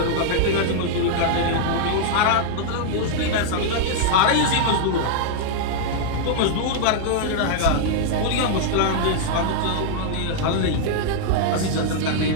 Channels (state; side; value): different; both; correlation -0.01